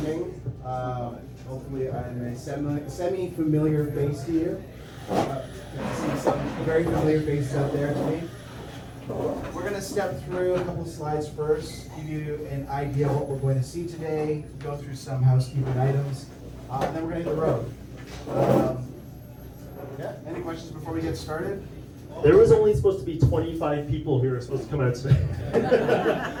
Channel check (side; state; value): both; identical; correlation 1.00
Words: Ming. Hopefully I'm a semi-familiar face to you. I see some very familiar faces out there to me. We're going to step through a couple of slides first, give you an idea of what we're going to see today, go through some housekeeping items, and then we're going to hit the road. Yeah, any questions before we get started? There was only supposed to be 25 people who were supposed to come out today.